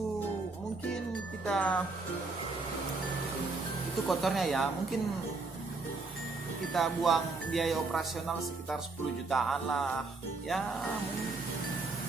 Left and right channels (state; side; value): quieter; left; 3.7 dB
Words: mungkin kita, itu kotornya ya, mungkin kita buang biaya operasional sekitar 10 jutaan lah. Ya